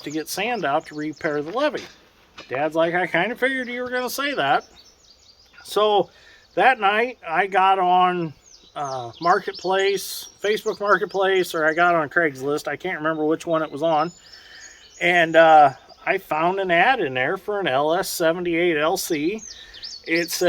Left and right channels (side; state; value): both; identical; correlation 1.00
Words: to get sand out to repair the levee. Dad's like, I kind of figured you were going to say that. So that night I got on Marketplace, Facebook Marketplace, or I got on Craigslist. I can't remember which one it was on. And I found an ad in there for an LS78LC. It